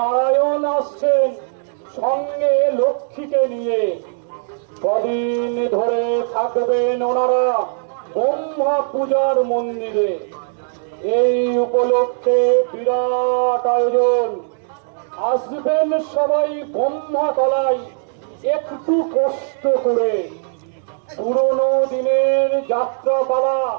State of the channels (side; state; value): left; silent; 66 dB below the other